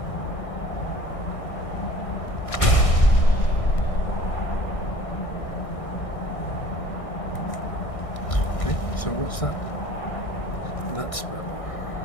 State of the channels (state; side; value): late; right; 1.6 ms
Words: Okay, so what's that? That spell.